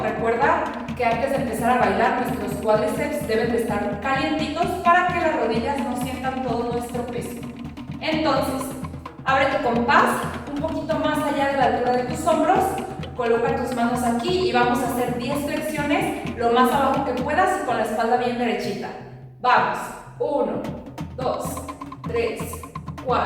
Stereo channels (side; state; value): both; identical; correlation 1.00